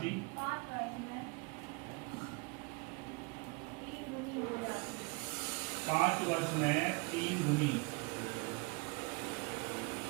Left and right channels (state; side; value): quieter; left; 29.4 dB